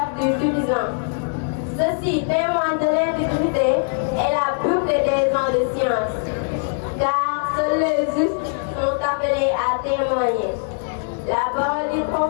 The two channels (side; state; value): right; silent; digital silence